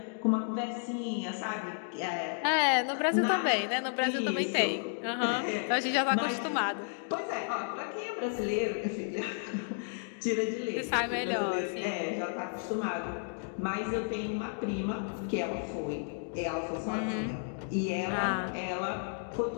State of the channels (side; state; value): right; silent; digital silence